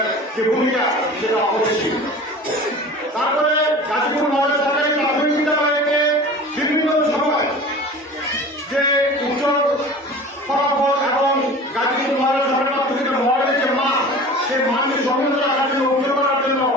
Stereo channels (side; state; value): both; normal; correlation 0.39